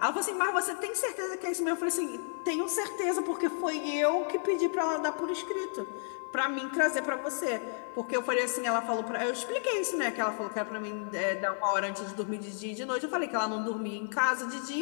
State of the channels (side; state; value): right; silent; digital silence